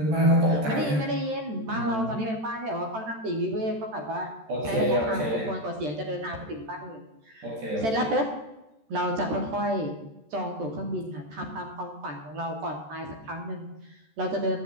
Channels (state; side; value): late; left; 13 ms